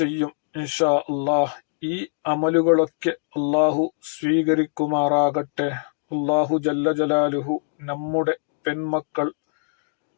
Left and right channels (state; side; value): silent; right; digital silence